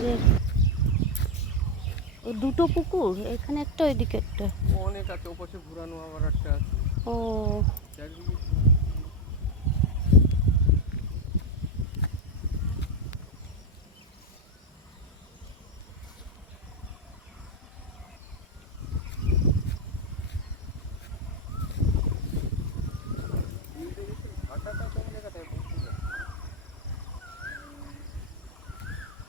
দুটো পুকুর, এখানে একটা ওইদিকে একটা। অনেক আছে, ওপাশে ঘুরানো আবার একটা আছে। ও চারিদিকে ভাটাটা কোন জায়গাটায় বুঝতে পারছি না।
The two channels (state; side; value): normal; both; correlation 0.08